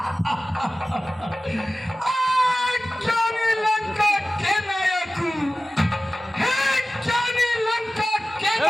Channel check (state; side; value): normal; both; correlation 0.96